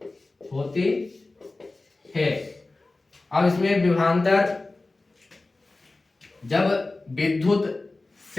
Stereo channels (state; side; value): quieter; right; 3.2 dB